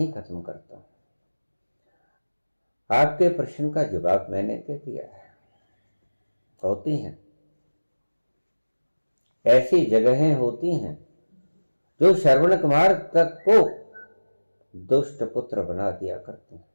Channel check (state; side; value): inverted; both; correlation -1.00